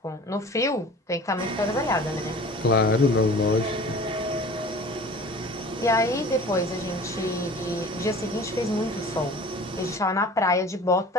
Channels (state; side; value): normal; both; correlation 0.42